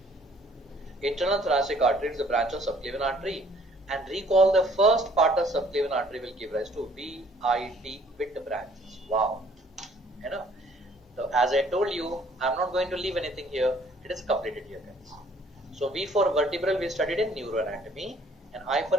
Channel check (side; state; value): both; normal; correlation 0.59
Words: Internal thoracic artery is a branch of subclavian artery. And recall, the first part of subclavian artery will give rise to VIT, with branches. Wow. You know. So as I told you, I'm not going to leave anything here. It is completed here, guys. So V for vertebral we studied in neuroanatomy, and I for